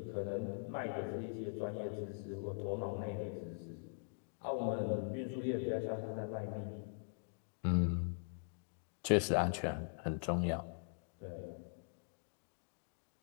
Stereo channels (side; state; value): right; silent; digital silence